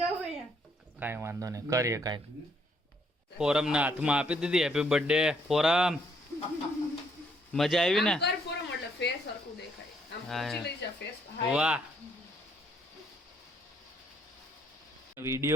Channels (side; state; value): both; normal; correlation 0.70